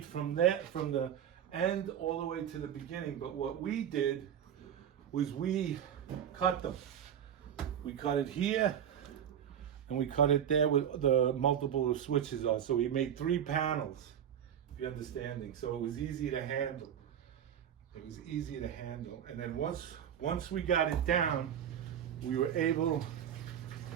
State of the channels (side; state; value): left; quieter; 9.3 dB